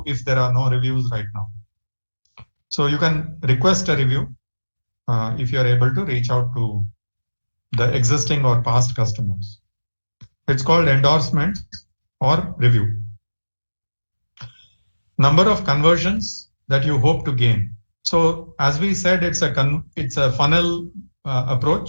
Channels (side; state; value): both; inverted; correlation -1.00